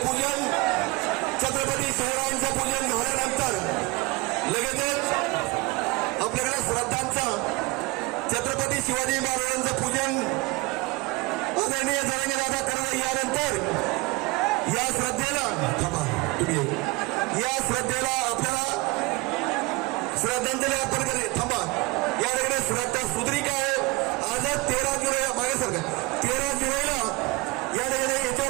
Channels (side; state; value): left; quieter; 24.0 dB